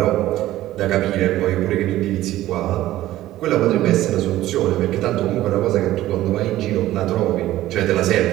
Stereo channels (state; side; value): quieter; left; 14.9 dB